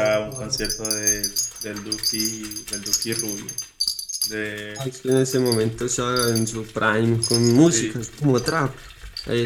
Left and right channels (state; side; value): identical; both; correlation 1.00